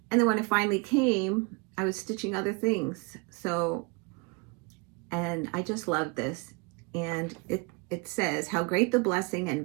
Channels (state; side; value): quieter; left; 29.2 dB